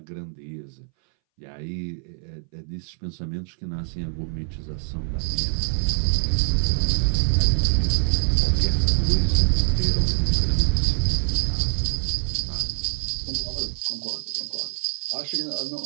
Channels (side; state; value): left; silent; 61 dB below the other